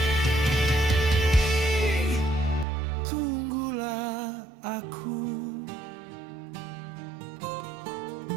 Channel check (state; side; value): drops out; left; at 2.7 s